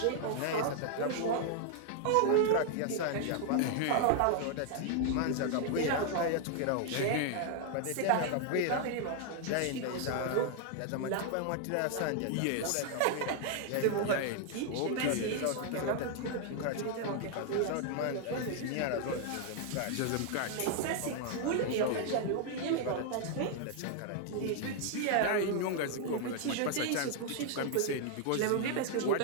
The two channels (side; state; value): both; different; correlation 0.00